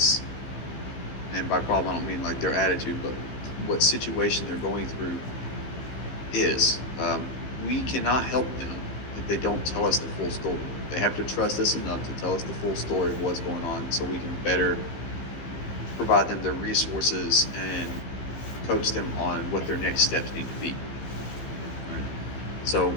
And by problem, I don't mean like their attitude, but what situation they're going through is. We cannot help them if they don't tell us the full story. They have to trust us enough to tell us the full story of what's going on, so we can better provide them the resources and coach them on what their next steps need to be. Right? So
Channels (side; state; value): right; late; 15 ms